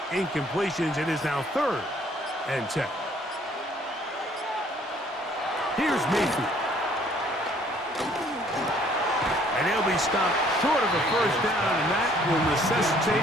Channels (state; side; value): normal; both; correlation 0.60